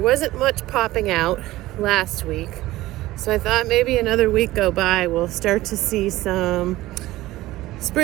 much popping out last week. So I thought maybe another week go by, we'll start to see some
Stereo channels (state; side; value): quieter; left; 17.1 dB